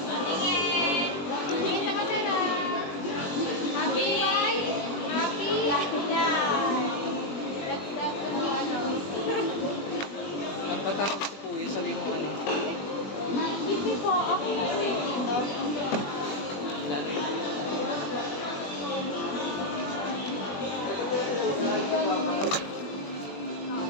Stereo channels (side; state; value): right; late; 20 ms